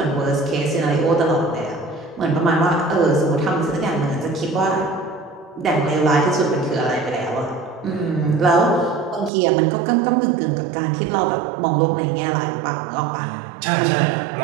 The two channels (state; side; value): drops out; left; at 9.3 s